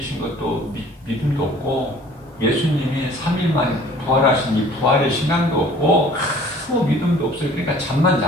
것도 믿음도 없고 예수님이 3일 만에 부활하신 이 부활의 신앙도 없고 아무 믿음도 없어요. 그러니까 잠만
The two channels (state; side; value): normal; both; correlation 0.51